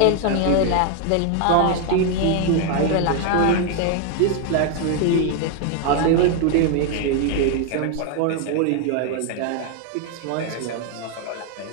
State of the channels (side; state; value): both; different; correlation 0.01